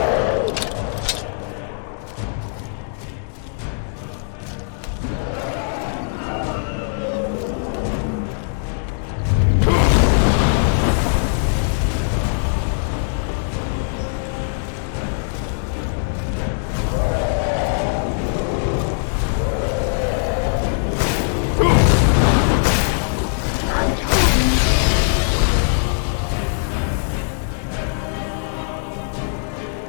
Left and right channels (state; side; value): silent; right; digital silence